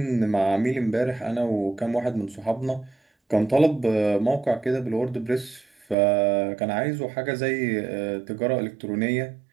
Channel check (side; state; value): left; drops out; at 6.0 s